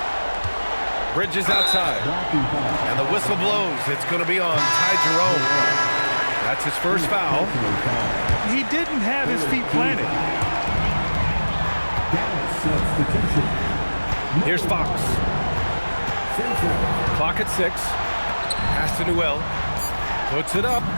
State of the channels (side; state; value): both; inverted; correlation -1.00